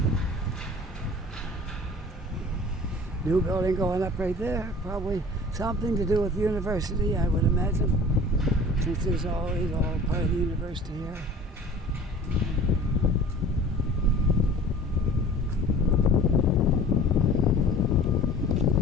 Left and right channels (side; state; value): both; normal; correlation 0.45